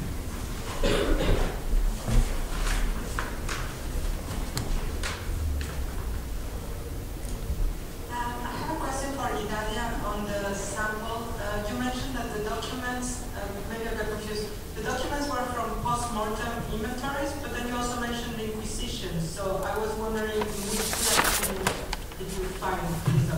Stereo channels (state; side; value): identical; both; correlation 1.00